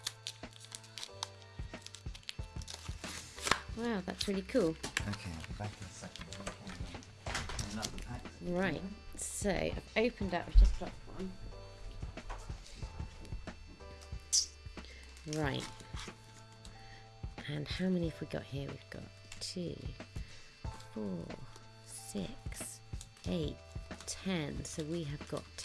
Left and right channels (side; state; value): both; identical; correlation 1.00